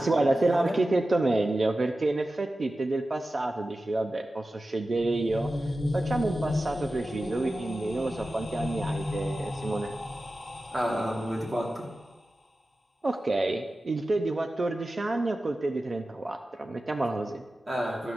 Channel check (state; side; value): normal; both; correlation 0.94